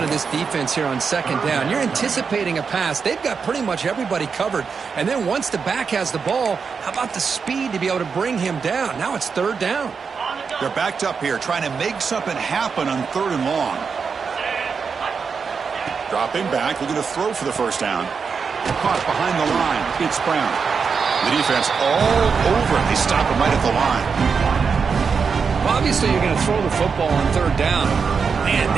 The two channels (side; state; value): left; quieter; 5.7 dB